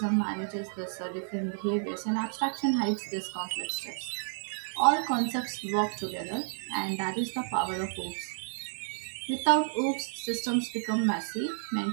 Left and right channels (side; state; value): left; silent; digital silence